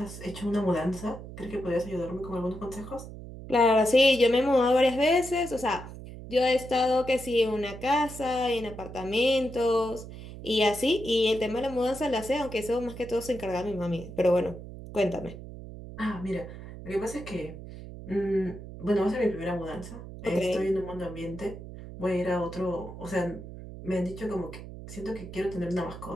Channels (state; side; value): noise; right; hum, 12 dB below the sound